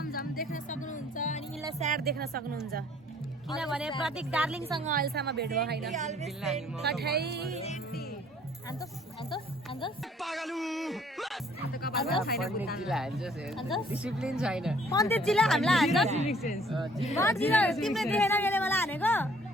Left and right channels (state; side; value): normal; both; correlation 0.59